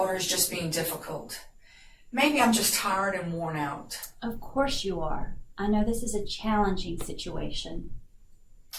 is just being difficult. Maybe I'm just tired and worn out. Of course you are. I know this is a challenging situation.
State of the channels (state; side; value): identical; both; correlation 1.00